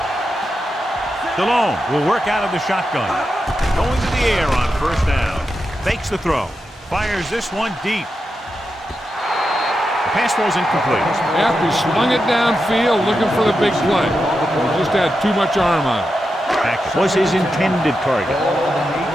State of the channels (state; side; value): normal; both; correlation 0.88